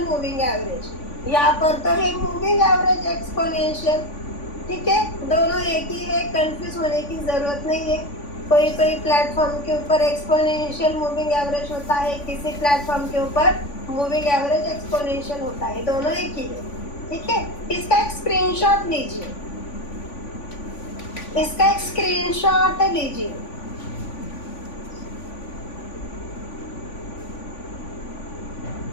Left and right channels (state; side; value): late; right; 3.5 ms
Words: मूविंग एवरेज, यहाँ पर तो है मूविंग एवरेज एक्सपोनेंशियल, ठीक है, दोनों एक ही है, कंफ्यूज होने की जरूरत नहीं है। कोई कोई प्लेटफॉर्म के ऊपर एक्सपोनेंशियल मूविंग एवरेज होता है, किसी प्लेटफॉर्म के ऊपर मूविंग एवरेज एक्सपोनेंशियल होता है, दोनों एक ही है, ठीक है। इसका एक स्क्रीनशॉट लीजिए, इसका एक स्क्रीनशॉट लीजिए।